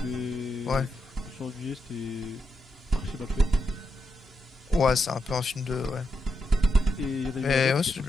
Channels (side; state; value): both; normal; correlation 0.83